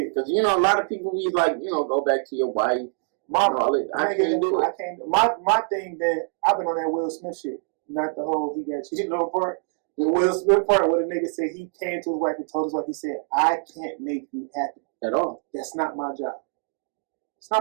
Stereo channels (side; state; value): left; silent; 60 dB below the other